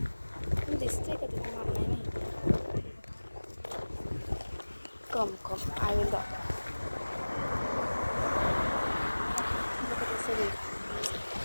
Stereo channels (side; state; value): both; inverted; correlation -1.00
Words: दिसतंय का तिथे? मला नाही माहिती. कम आय विल दाखव.